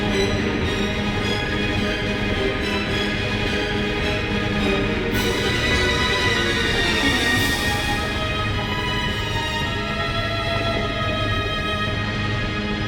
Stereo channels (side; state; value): both; identical; correlation 1.00